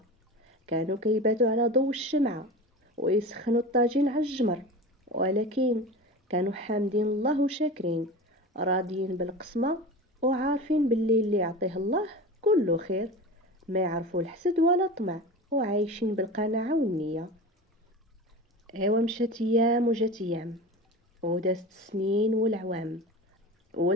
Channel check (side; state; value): both; normal; correlation 0.31